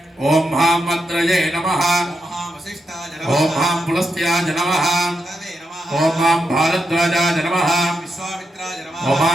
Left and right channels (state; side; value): normal; both; correlation 0.84